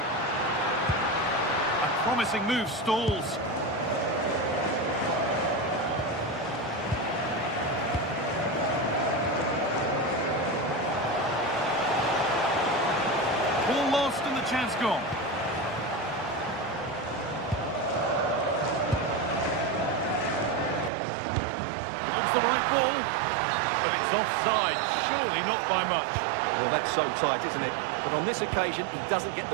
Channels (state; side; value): drops out; left; at 20.9 s